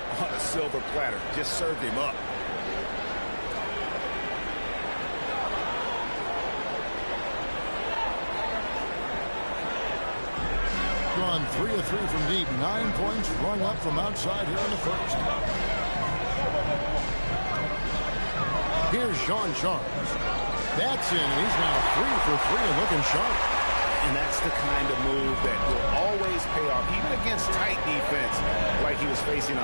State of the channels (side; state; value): both; inverted; correlation -1.00